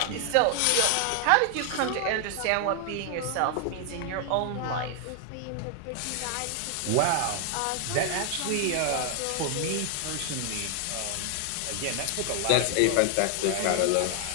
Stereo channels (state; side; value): different; both; correlation 0.00